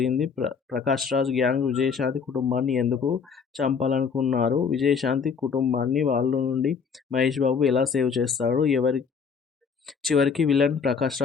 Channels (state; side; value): quieter; right; 6.0 dB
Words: ప్రకాష్ రాజ్ గ్యాంగ్ విజయశాంతి కుటుంబాన్ని ఎందుకు చంపాలనుకున్నారు? విజయశాంతి కుటుంబాన్ని వాళ్ళ నుండి మహేష్ బాబు ఎలా సేవ్ చేస్తాడు? చివరికి విలన్ ప్రకాష్